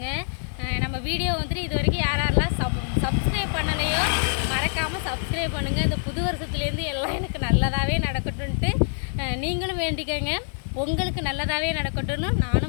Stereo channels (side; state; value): right; silent; digital silence